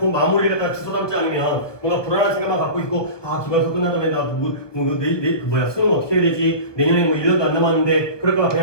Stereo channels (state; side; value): late; right; 1.1 ms